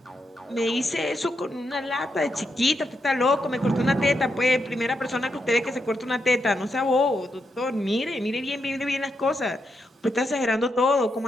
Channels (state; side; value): normal; both; correlation 0.82